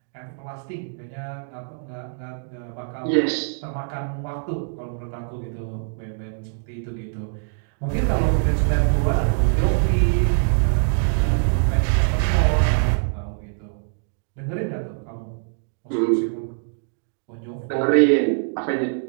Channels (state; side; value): silent; left; digital silence